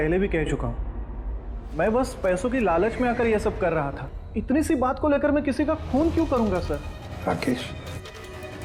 भी कह चुका हूं, मैं बस पैसों की लालच में आकर यह सब कर रहा था। इतनी सी बात को लेकर मैं किसी का खून क्यों करूंगा सर? राकेश,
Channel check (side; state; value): both; identical; correlation 1.00